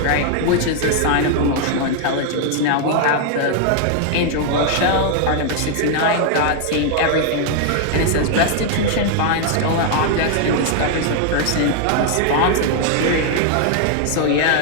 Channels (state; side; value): different; both; correlation 0.00